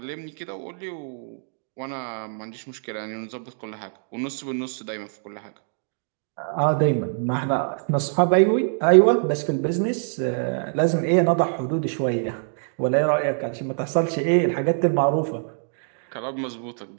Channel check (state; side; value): silent; left; digital silence